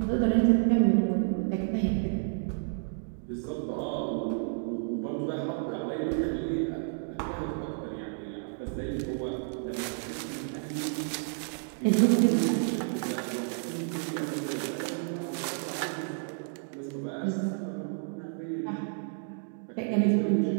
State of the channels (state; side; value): silent; left; digital silence